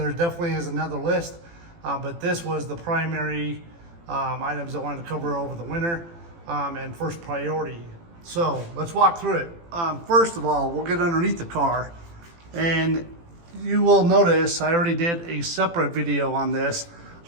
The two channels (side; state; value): left; late; 18 ms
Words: definitely is another list, but this was the primary items I wanted to cover over the winter and first priority. So let's walk through it. First of all, we'll get underneath the car, and you will notice I already did a separate video on this,